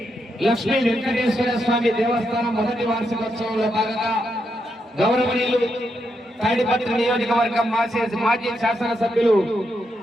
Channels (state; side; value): normal; both; correlation 0.82